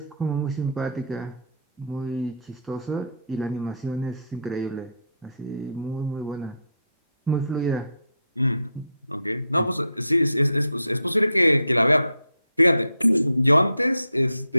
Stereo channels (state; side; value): inverted; both; correlation -0.71